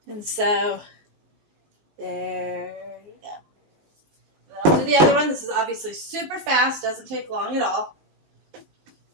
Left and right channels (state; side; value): late; left; 19 ms